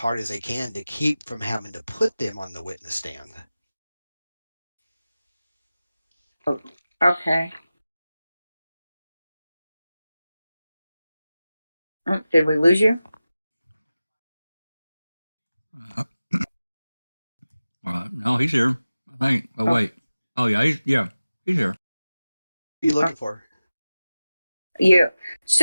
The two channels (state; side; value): inverted; both; correlation -0.96